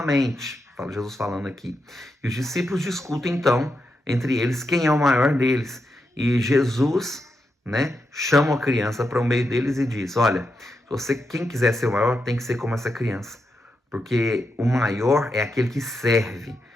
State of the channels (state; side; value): normal; both; correlation 0.85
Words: Jesus falando aqui. E os discípulos discutem então entre eles quem é o maior deles. E Jesus, né, chama a criança para o meio deles e diz, olha, quem quiser ser o maior tem que ser como essa criança. Porque o maior é aquele que serve.